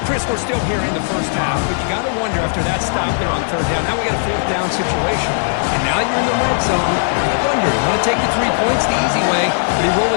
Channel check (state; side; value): silent; right; digital silence